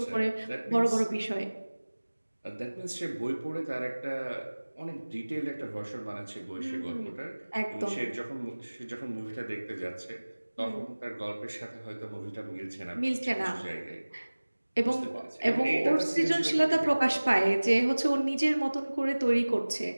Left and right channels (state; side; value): inverted; both; correlation -1.00